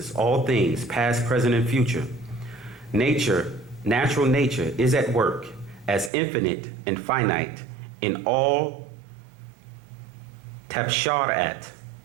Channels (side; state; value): left; drops out; at 6.1 s